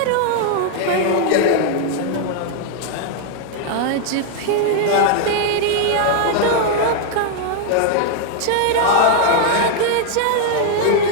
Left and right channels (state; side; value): different; both; correlation 0.00